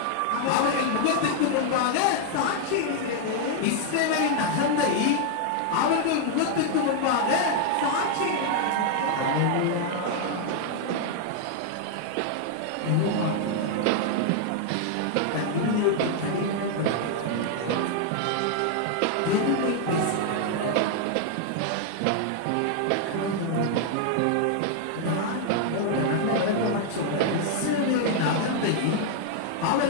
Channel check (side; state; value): both; different; correlation 0.00